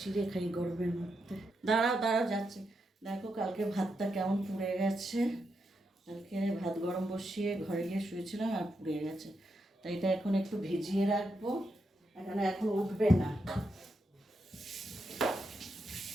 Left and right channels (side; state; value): both; normal; correlation 0.84